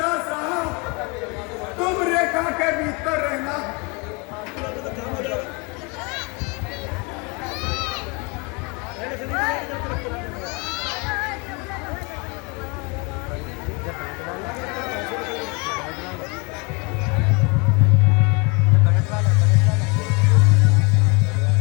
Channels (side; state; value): right; quieter; 30.0 dB